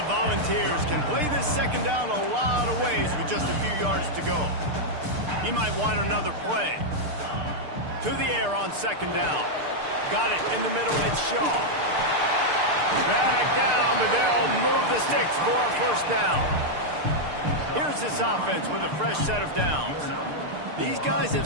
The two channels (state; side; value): late; left; 6.7 ms